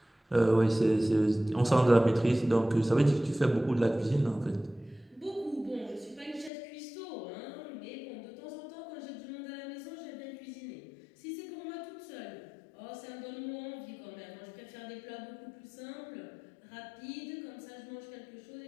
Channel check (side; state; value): right; drops out; at 6.5 s